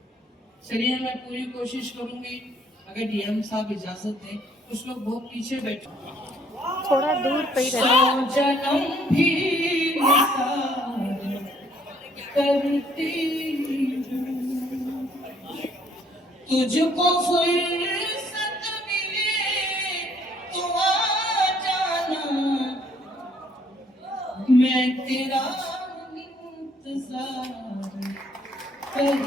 चलिए मैं पूरी कोशिश करूंगी, अगर डीएम साहब इजाजत दें। कुछ लोग बहुत पीछे बैठे, थोड़ा दूर पे ही रहना। जन्म भी करती तुझको फुर्सत मिले तो आ जाना, मैं तेरा इंतजार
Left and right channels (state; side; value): normal; both; correlation 0.64